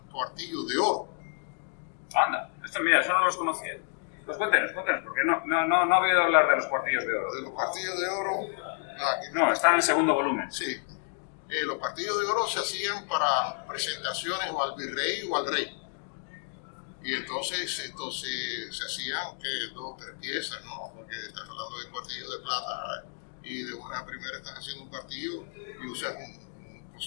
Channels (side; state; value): right; silent; 58 dB below the other